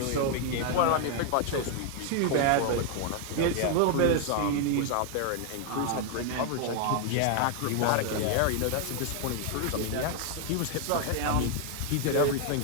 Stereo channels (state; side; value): different; both; correlation 0.00